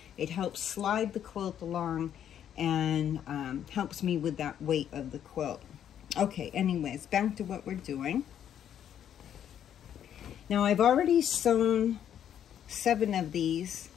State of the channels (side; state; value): right; quieter; 9.8 dB